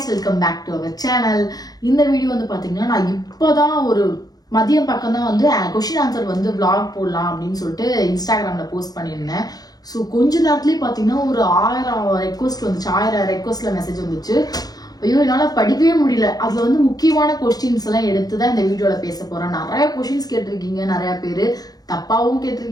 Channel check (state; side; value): late; right; 0.19 ms